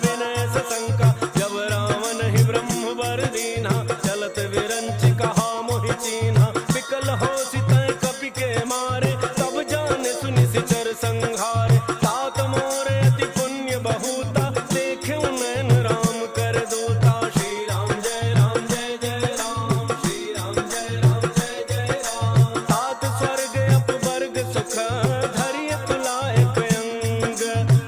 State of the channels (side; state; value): both; identical; correlation 1.00